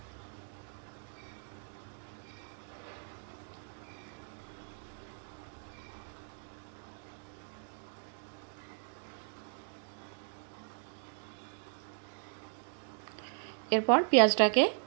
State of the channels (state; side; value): silent; left; digital silence